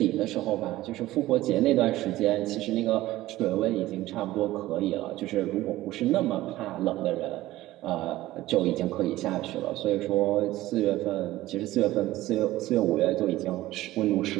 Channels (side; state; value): left; quieter; 16.3 dB